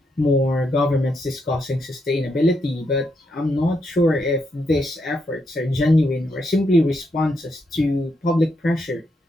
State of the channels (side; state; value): both; normal; correlation 0.80